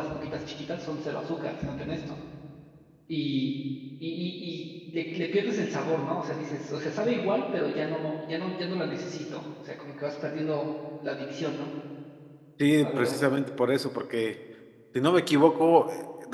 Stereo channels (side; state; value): both; identical; correlation 1.00